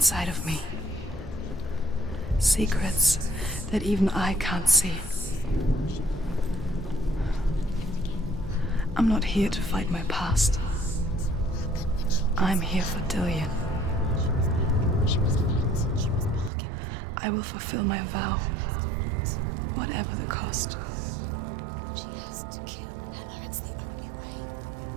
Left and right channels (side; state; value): left; drops out; at 16.5 s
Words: of me. Secrets that even I can't see. I'm not here to fight my past. I'm here for Dillian. I will fulfill my vow, whatever the cost. She has to kill Hela. It's the only way.